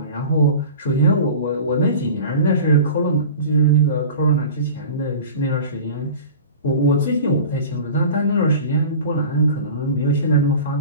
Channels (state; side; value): inverted; both; correlation -0.38